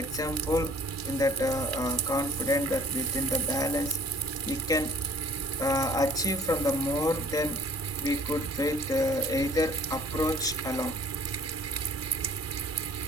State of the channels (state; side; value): normal; both; correlation 0.54